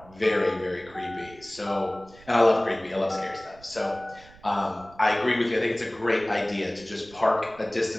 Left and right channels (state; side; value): noise; right; rumble, 23 dB below the sound